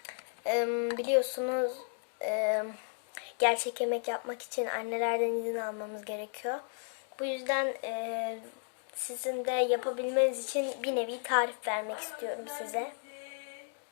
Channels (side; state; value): right; silent; 55 dB below the other